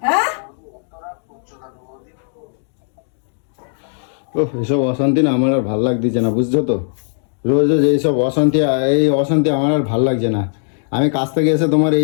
হ্যাঁ, ও এসব অশান্তি না আমার আর ভাল লাগতেছে না, বুঝছো তো? রোজ রোজ এইসব অশান্তি, এই অশান্তি আমার আর ভাল লাগছে না। আমি কাছ থেকে এসে তোমার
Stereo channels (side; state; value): right; silent; digital silence